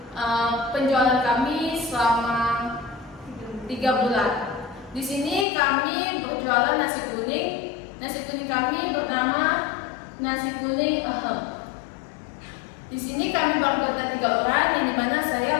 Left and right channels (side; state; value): right; drops out; at 5.5 s